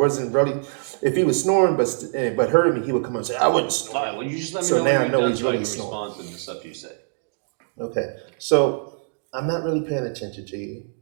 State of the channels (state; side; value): silent; left; digital silence